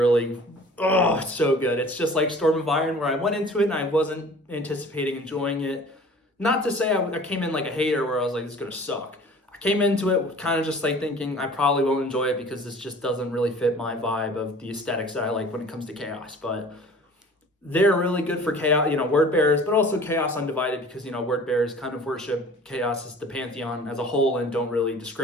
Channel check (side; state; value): both; normal; correlation 0.46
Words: oh, it's so good. It's just like Storm of Iron, where I went into it and I wasn't anticipating enjoying it. Not to say I came in like a hater where I was like, this is going to suck. I came into it kind of just like thinking I probably won't enjoy it because this just doesn't really fit my vibe of the aesthetics that I like when it comes to Chaos. But they're really good for Chaos, word bearers, but also Chaos Undivided, because, word bearers kind of worship Chaos as the pantheon as a whole and don't really